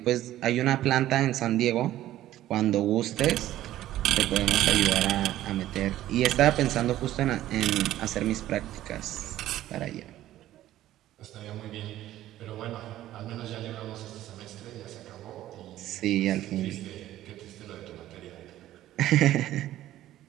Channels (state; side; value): quieter; left; 13.8 dB